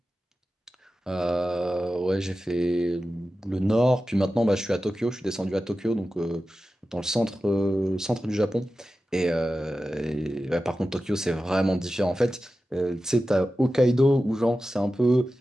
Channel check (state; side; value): normal; both; correlation 0.94